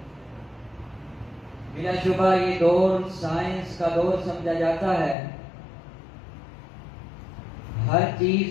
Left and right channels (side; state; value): right; drops out; at 5.2 s